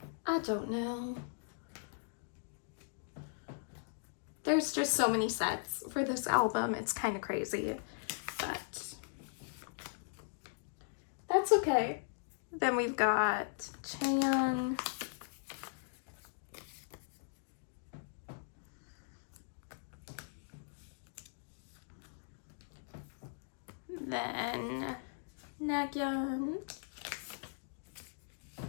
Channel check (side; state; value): right; silent; digital silence